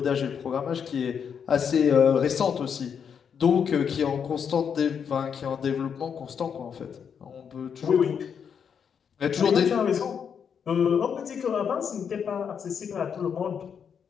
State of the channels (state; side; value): quieter; right; 7.2 dB